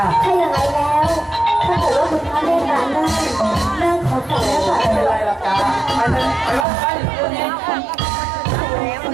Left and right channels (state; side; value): drops out; left; at 6.7 s